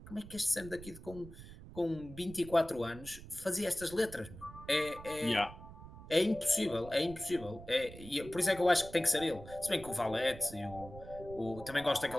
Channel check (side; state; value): right; noise; rumble, 15 dB below the sound